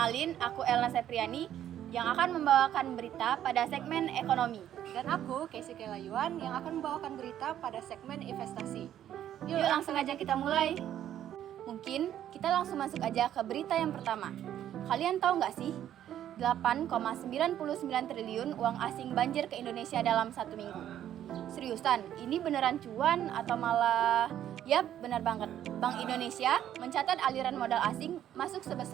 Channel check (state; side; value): quieter; left; 11.1 dB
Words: aku Elna Sepriani yang akan membawakan berita pada segmen ekonomi. Dan aku, Casey Kelayuan, yang akan membawakan berita pada segmen investasi. Yuk langsung aja kita mulai. Mungkin kita langsung masuk aja ke berita yang pertama. Kalian tahu nggak sih? 8,99 triliun uang asing banjir ke Indonesia dalam 1 minggu. Seriusan, ini beneran cuan atau malah... Yap, benar banget. Bank Indonesia mencatat aliran modal asing masuk